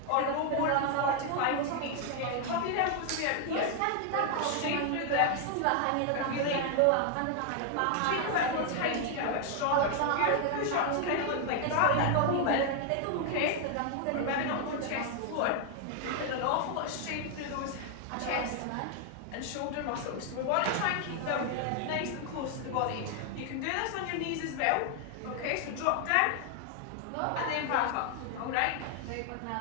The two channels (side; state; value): both; different; correlation 0.00